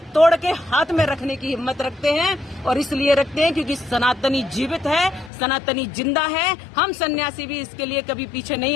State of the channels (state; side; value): drops out; right; at 5.3 s